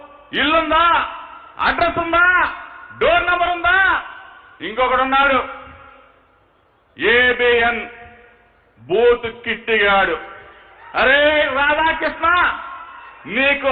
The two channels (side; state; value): both; identical; correlation 1.00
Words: ఇల్లుందా, అడ్రస్ ఉందా, డోర్ నంబర్ ఉందా? ఇంకొకడున్నాడు ఏబిఎన్ బూత్ కిట్టిగాడు. అరే రాధాకృష్ణ, నీకు